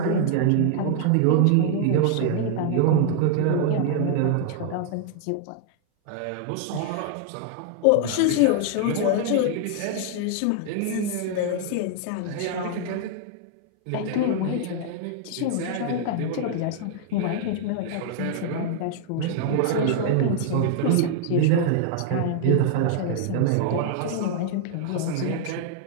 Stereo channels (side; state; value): both; different; correlation 0.00